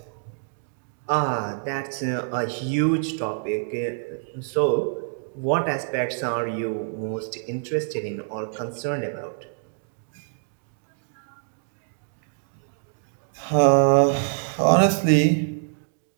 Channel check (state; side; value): silent; left; digital silence